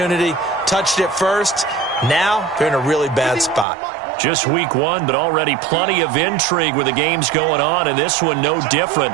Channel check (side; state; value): left; drops out; at 3.7 s